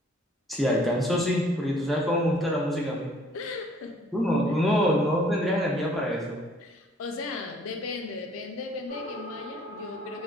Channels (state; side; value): normal; both; correlation 0.58